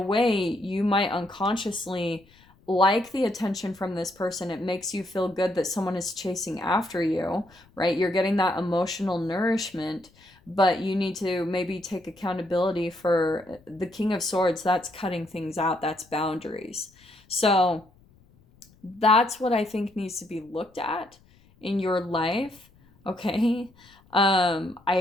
way you might unconsciously like the attention from this person. It makes you feel good that someone is chasing after you, right? You're getting that emotional nourishment, but you need to maybe take accountability for the King of Swords. That's cutting things out, that's boundaries. So that's what I think needs to be looked at in your life. Okay.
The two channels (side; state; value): left; noise; rumble, 30 dB below the sound